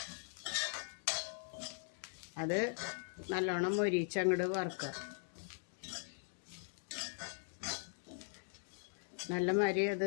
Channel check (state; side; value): silent; right; digital silence